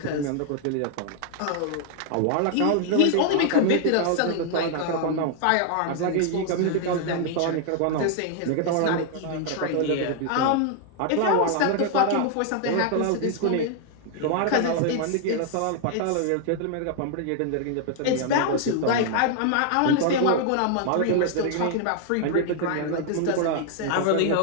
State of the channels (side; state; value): both; different; correlation 0.00